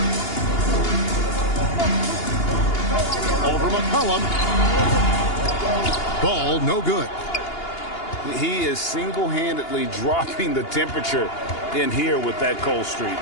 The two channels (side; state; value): right; late; 2.8 ms